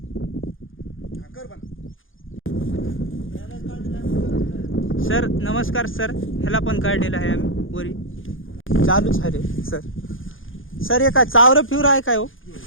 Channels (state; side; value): late; right; 0.58 ms